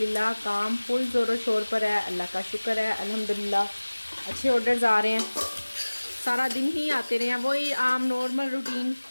काम फुल ज़ोरों शोर पर है, अल्लाह का शुक्र है। अल्हम्दुलिल्लाह अच्छे ऑर्डर्स आ रहे हैं, सारा दिन ही आते रहे हैं। वही आम नॉर्मल रूटीन,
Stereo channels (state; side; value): inverted; both; correlation -1.00